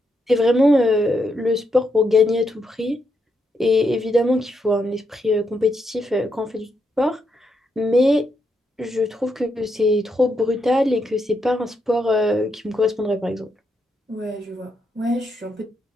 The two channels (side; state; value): both; normal; correlation 0.81